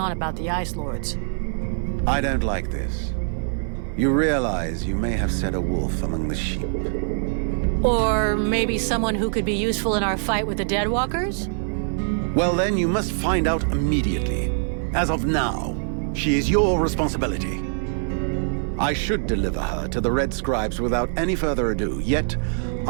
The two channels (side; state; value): left; silent; digital silence